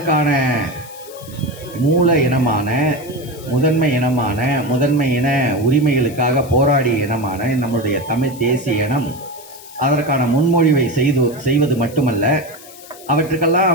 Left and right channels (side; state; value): left; noise; hiss, 19 dB below the sound